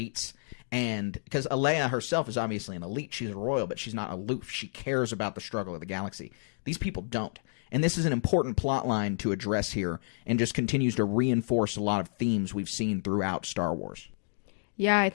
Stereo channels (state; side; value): silent; right; digital silence